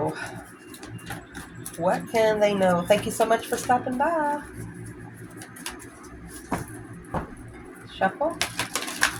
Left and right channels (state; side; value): identical; both; correlation 1.00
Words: What can they know? Thank you so much for stopping by. Shuffle.